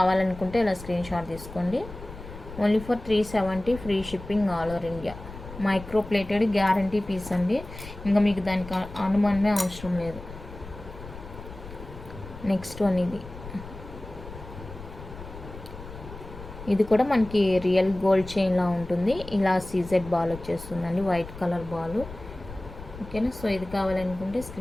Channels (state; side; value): noise; left; rumble, 14 dB below the sound